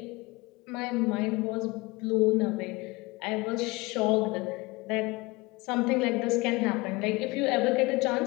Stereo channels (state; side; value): quieter; right; 23.7 dB